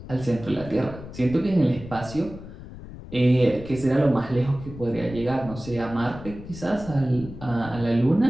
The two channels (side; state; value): left; noise; rumble, 14 dB below the sound